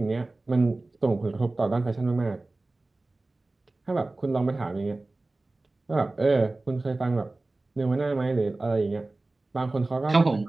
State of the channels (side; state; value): left; quieter; 3.1 dB